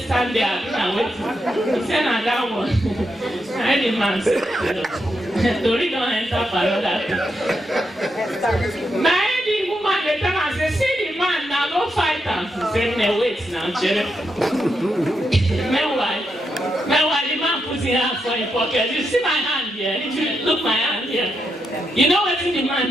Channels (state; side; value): normal; both; correlation 0.83